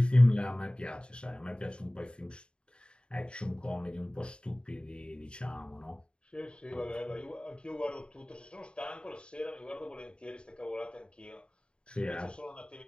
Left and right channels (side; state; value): right; late; 0.052 ms